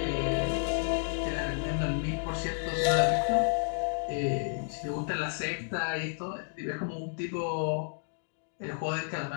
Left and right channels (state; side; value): silent; right; digital silence